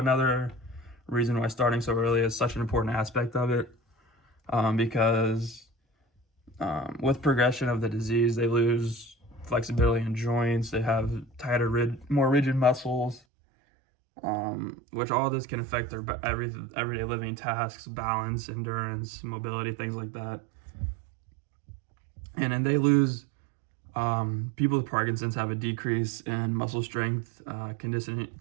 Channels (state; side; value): drops out; left; at 13.2 s